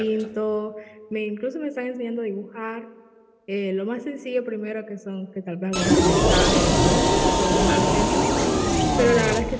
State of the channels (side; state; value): both; identical; correlation 1.00